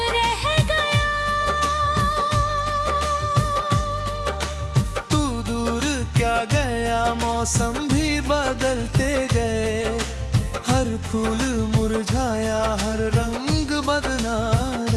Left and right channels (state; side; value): identical; both; correlation 1.00